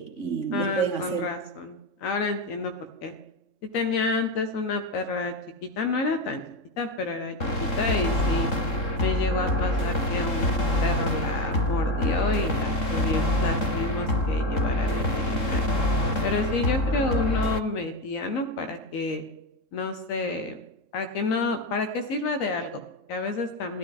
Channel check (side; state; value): right; late; 3.7 ms